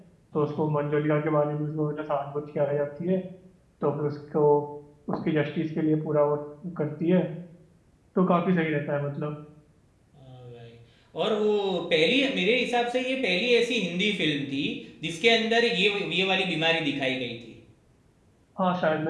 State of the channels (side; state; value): both; identical; correlation 1.00